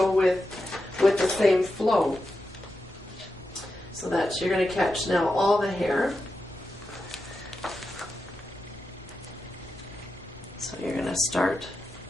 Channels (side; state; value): both; normal; correlation 0.89